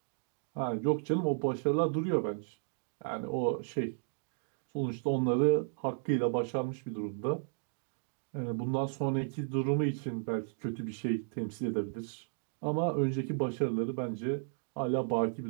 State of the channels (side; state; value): left; silent; digital silence